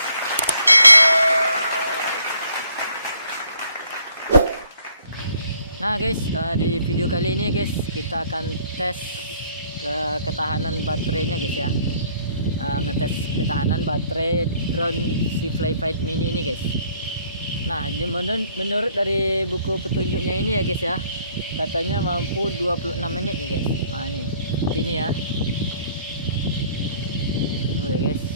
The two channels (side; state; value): both; inverted; correlation -0.62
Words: Nah guys, di video kali ini guys, kita akan tes ketahanan baterainya guys ya. Ngetes ketahanan baterai drone si Flyfight Mini ini guys. Nah, menurut dari buku petunjuknya ini ya guys ya, katanya mampu 26 menit nih guys. Nah ini, seperti ini ya. Tuh ya guys.